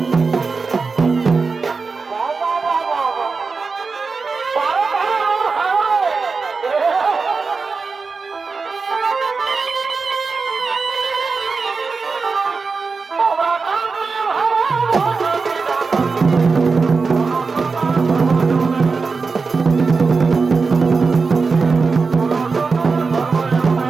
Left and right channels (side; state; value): left; quieter; 4.6 dB